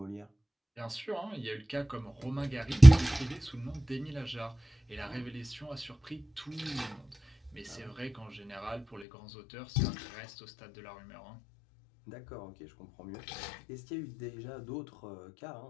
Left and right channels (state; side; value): drops out; right; at 9.1 s